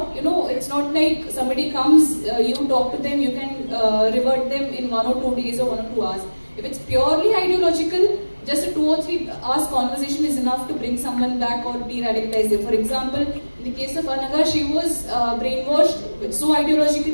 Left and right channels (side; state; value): both; inverted; correlation -1.00